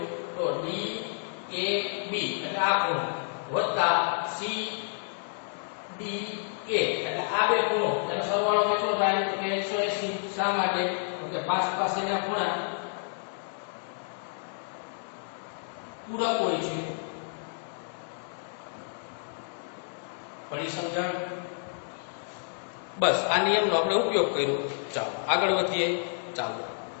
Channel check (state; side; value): silent; right; digital silence